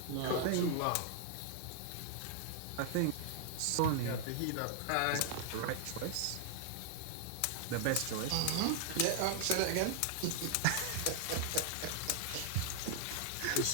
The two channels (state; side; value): different; both; correlation -0.01